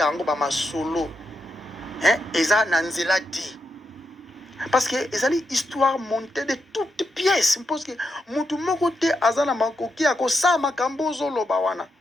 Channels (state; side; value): normal; both; correlation 0.84